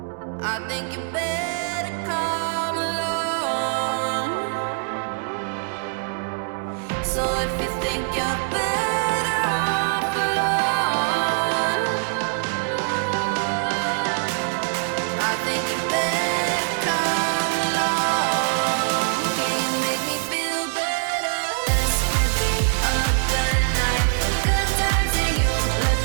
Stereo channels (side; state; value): left; silent; 63 dB below the other